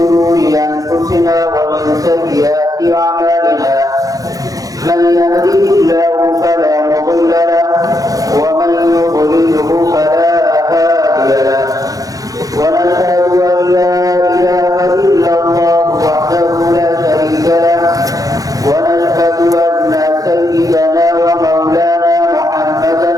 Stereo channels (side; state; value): left; late; 0.17 ms